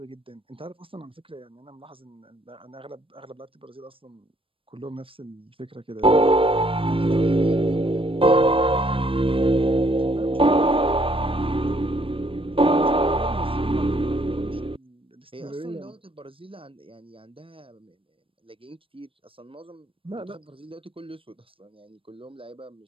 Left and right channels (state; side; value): late; left; 0.26 ms